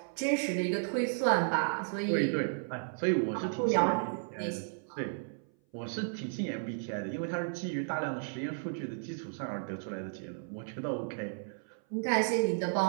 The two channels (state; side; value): silent; left; 55 dB below the other